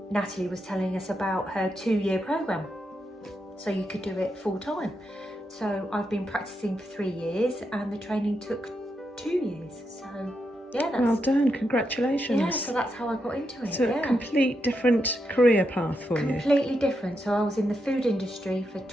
Natalie was telling us about her 2-year program, so you could do it full time. So I've been practicing for 3 years, and the training took 2 years. So yeah, that's well done, congratulations. Yeah, so that's how I got into it. It's a complete different career path for you. Completely different. So I was in the food industry for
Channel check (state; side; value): normal; both; correlation 0.83